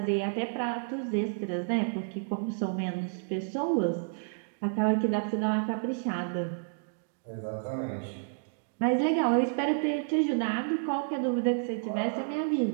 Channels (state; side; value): silent; left; digital silence